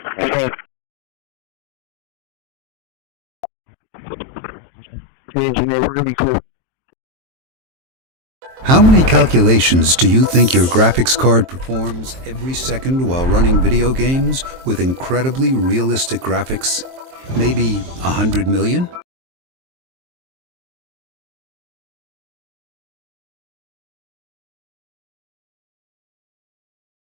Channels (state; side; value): late; left; 23 ms